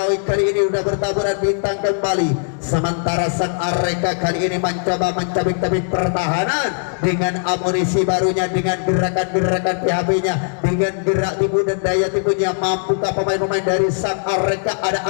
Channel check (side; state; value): right; silent; digital silence